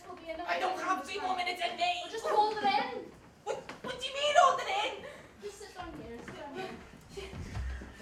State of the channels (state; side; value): identical; both; correlation 1.00